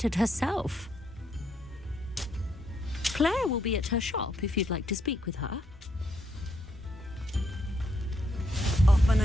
herself. Claire will be at her shop if you'd like to speak with her. Off on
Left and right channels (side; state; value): both; normal; correlation 0.76